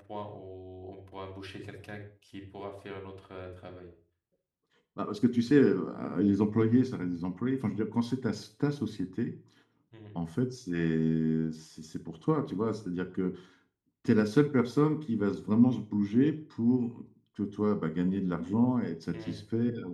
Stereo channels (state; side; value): identical; both; correlation 1.00